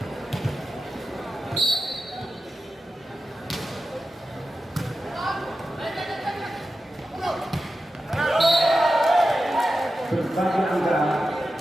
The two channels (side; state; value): both; normal; correlation 0.92